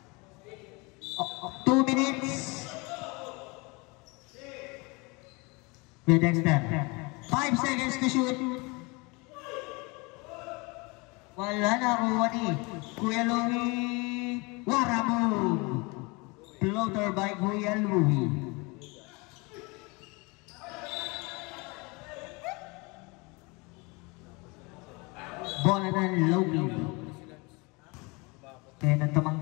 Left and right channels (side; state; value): right; quieter; 27.3 dB